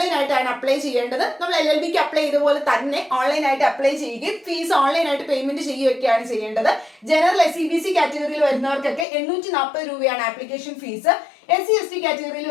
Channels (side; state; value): right; drops out; at 9.1 s